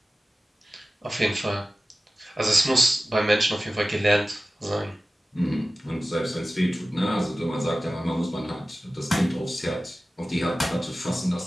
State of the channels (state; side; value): normal; both; correlation 0.96